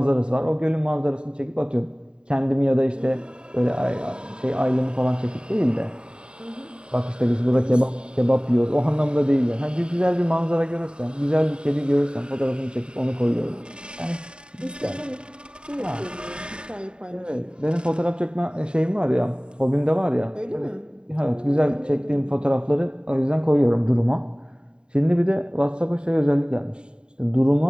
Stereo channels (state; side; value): late; left; 0.050 ms